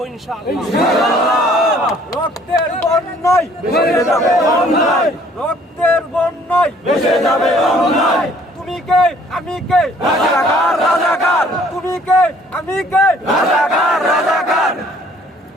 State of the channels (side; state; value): both; normal; correlation 0.58